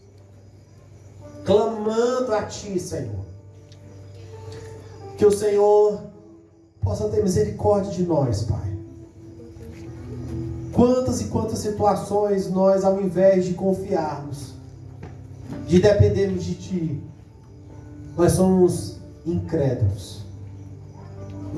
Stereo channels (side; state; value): both; identical; correlation 1.00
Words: clamando a ti, Senhor, que o Senhor possa ter misericórdia de nós, Pai. Quantas e quantas situações nós, ao invés de confiarmos, de dependermos de ti, nós somos incrédulos,